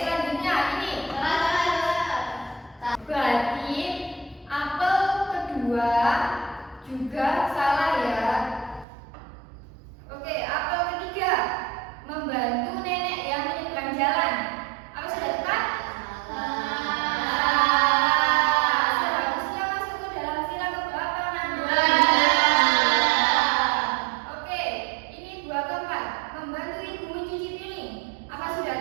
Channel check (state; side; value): drops out; left; at 8.8 s